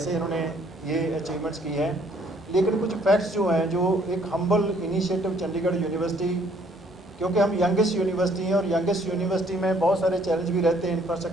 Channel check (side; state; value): both; normal; correlation 0.63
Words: इन्होंने ये अचीवमेंट्स की हैं। लेकिन कुछ फैक्ट्स जो हैं, जो एक हम्बल इनिशिएटिव चंडीगढ़ यूनिवर्सिटी, क्योंकि हम यंगेस्ट यूनिवर्सिटी हैं और यंगेस्ट यूनिवर्सिटी में बहुत सारे चैलेंज भी रहते हैं